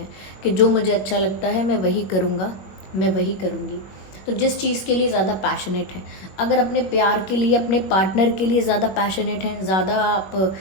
कि जो मुझे अच्छा लगता है मैं वही करूँगा, मैं वही करूँगी। तो जिस चीज़ के लिए ज़्यादा पैशनेट है, अगर अपने प्यार के लिए, अपने पार्टनर के लिए ज़्यादा पैशनेट हैं, ज़्यादा आप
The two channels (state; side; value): late; right; 21 ms